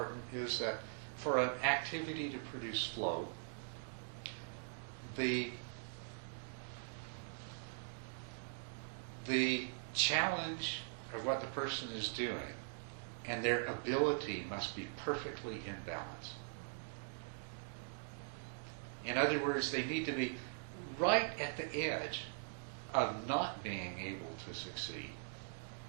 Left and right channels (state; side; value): silent; left; digital silence